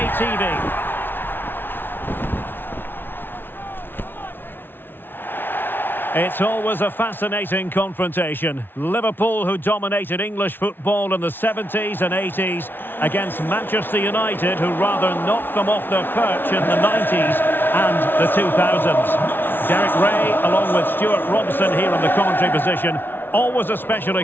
TV. It's always a fascinating confrontation. Liverpool, who dominated English football in the 70s and 80s, against Manchester United, who rather knocked them off their perch in the 90s and the 2000s. Derek Ray, along with Stuart Robson here in the commentary position. Always a special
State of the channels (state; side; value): late; right; 0.10 ms